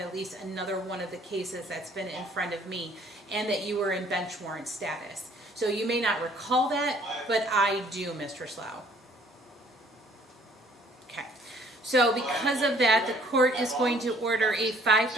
least another one of the cases that's been in front of me, and that you were in bench warrant status. So you may not recall that, but I do, Mr. Slough. Okay. So because of that, the court is going to order a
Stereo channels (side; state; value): both; normal; correlation 0.58